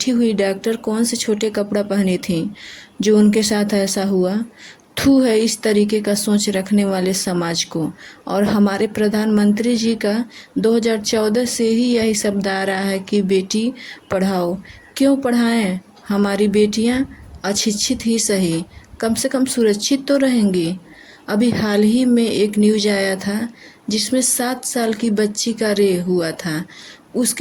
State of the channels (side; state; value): both; identical; correlation 1.00